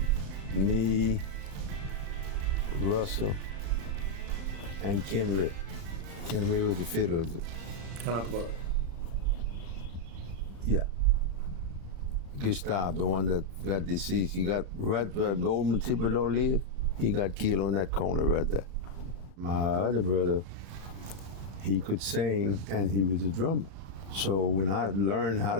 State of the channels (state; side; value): late; left; 35 ms